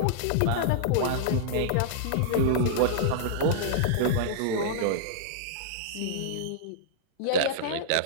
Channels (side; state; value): both; different; correlation -0.02